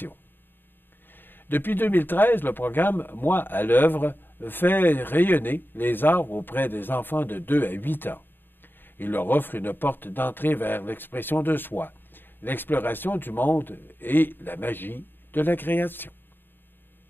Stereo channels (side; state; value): right; late; 0.096 ms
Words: Depuis 2013, le programme Moi à l'œuvre fait rayonner les arts auprès des enfants de 2 à 8 ans. Il leur offre une porte d'entrée vers l'expression de soi, l'exploration du monde et la magie de la création.